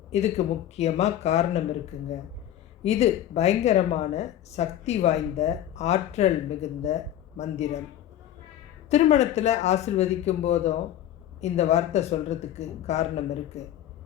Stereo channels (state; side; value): quieter; right; 11.8 dB